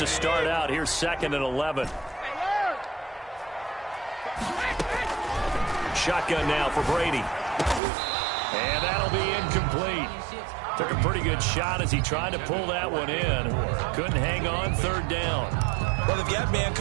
start out, here's 2nd and 11. Shotgun now for Brady. And that'll be incomplete. Took a pretty good shot as he tried to pull that one in. Couldn't hang on, 3rd down. Well, they've got man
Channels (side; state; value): left; drops out; at 7.8 s